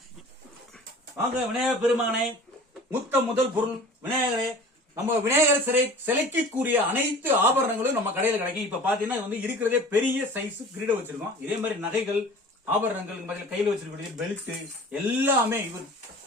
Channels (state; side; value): normal; both; correlation 0.42